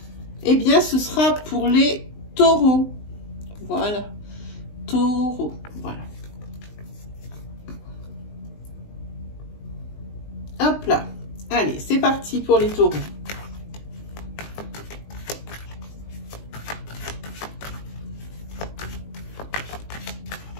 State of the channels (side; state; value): right; late; 19 ms